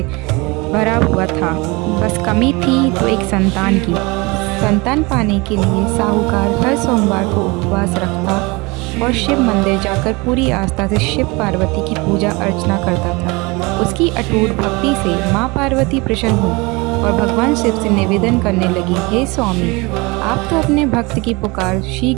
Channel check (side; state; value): left; quieter; 25.7 dB